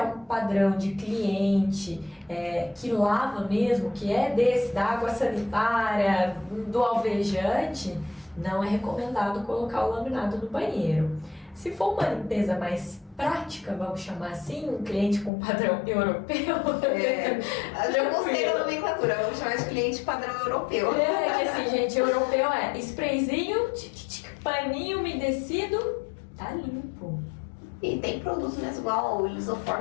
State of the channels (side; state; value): right; drops out; at 15.3 s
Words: um padrão de cliente que lava mesmo, que é desse, da água sanitária, do alvejante, não é recomendado colocar o laminado no banheiro. Se for uma limpeza mais prática, vamos chamar assim, um cliente com padrão europeu. Eu gostei da nomenclatura, vamos chamar de cliente padrão europeu. Que assim, gente, europeu é sprayzinho, paninho umedecido, tá limpo. E tem produtos mesmo, igual o